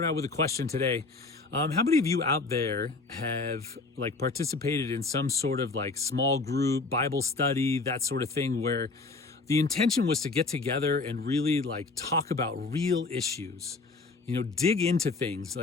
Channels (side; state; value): right; quieter; 3.8 dB